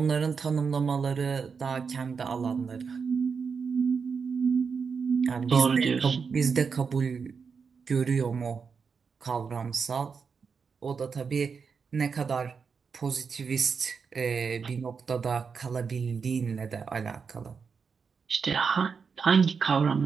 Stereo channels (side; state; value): left; quieter; 5.7 dB